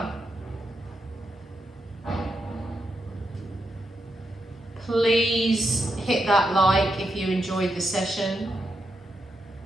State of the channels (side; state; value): both; normal; correlation 0.84